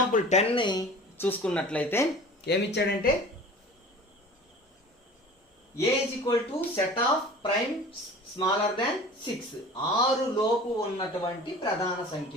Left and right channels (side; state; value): both; normal; correlation 0.41